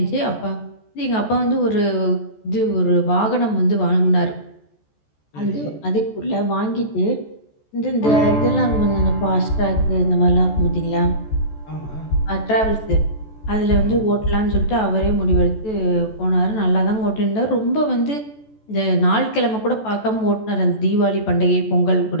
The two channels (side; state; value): right; late; 14 ms